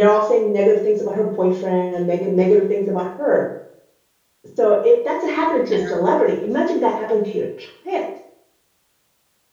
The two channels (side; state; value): both; identical; correlation 1.00